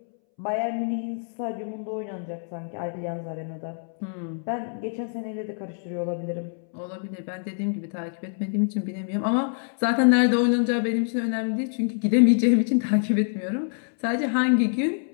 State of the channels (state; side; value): silent; right; 61 dB below the other